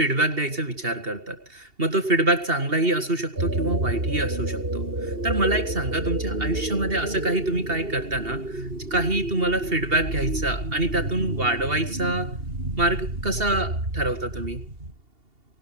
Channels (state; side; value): late; left; 2.8 ms